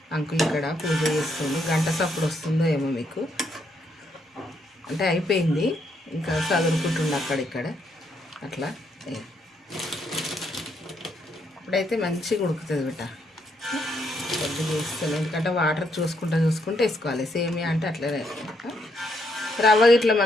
అంకుల్ ఇక్కడ పూజ చేస్తుంది, గంట సప్పుడు వస్తుందో ఏమో మీకు. అంటే అయిపోయింది, ఇంకా చదువుకుంటుండే అక్కడిక్కడ అట్లా. ఇప్పుడైతే మంచిగా ఉడుకుతుంది బిడ్డ. కొద్దిగా వేస్తాను, ఎందుకంటే వాటర్ చూసుకుంటూ వేసుకోవాలి. సేమియా అంటే అట్లనే. రవ్వ ఇట్లా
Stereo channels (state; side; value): normal; both; correlation 0.75